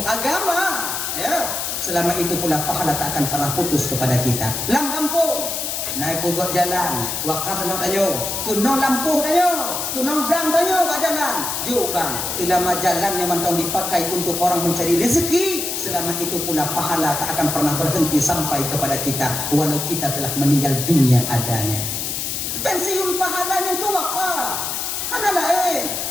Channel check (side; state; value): left; noise; hiss, 3 dB below the sound